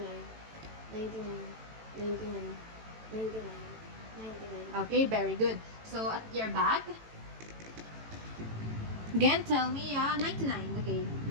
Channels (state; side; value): late; left; 18 ms